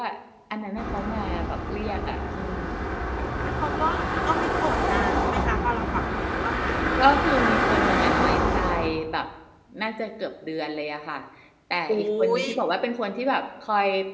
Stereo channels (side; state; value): both; identical; correlation 1.00